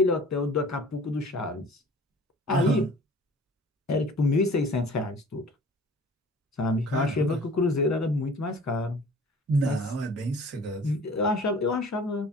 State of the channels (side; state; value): both; normal; correlation 0.47